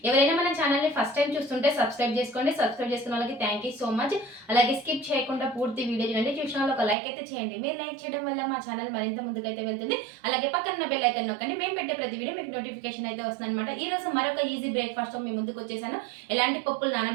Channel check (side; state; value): left; drops out; at 7.0 s